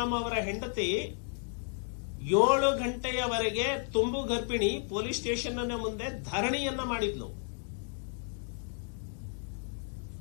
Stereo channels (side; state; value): right; silent; 56 dB below the other